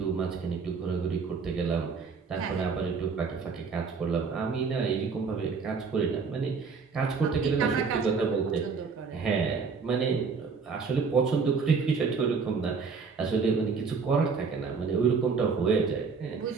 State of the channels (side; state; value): left; quieter; 5.2 dB